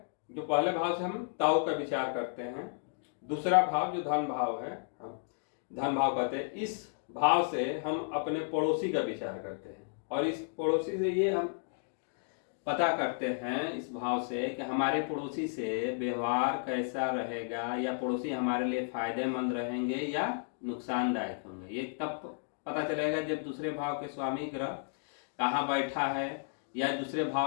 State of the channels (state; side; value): silent; right; digital silence